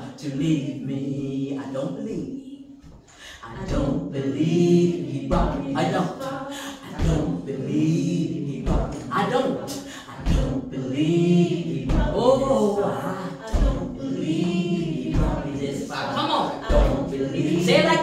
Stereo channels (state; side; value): identical; both; correlation 1.00